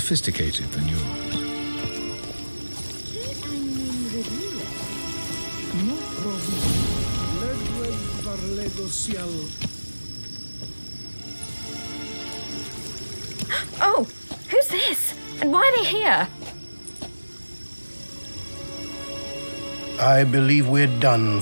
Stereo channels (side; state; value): both; inverted; correlation -1.00